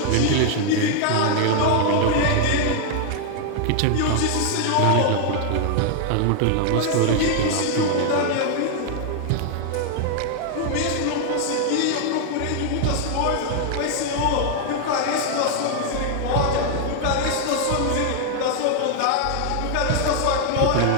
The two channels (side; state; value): both; different; correlation 0.00